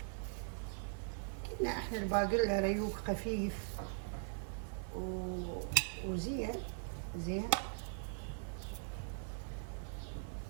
قلنا احنا الباقلة ريوق خفيف وزين زين.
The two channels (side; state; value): left; silent; 51 dB below the other